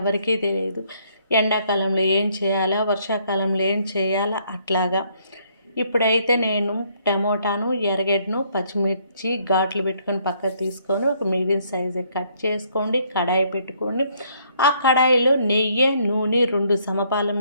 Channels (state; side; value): inverted; both; correlation -0.67